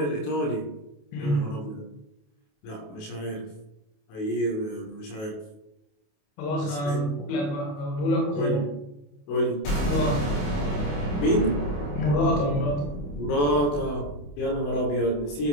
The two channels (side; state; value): right; late; 28 ms